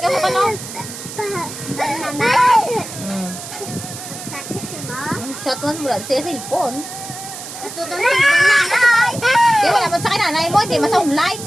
Yung ka no. Chat mo mula sa cellphone. Di wala mo sa kinanay mo, hindi masa online.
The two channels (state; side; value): noise; right; hiss, 11 dB below the sound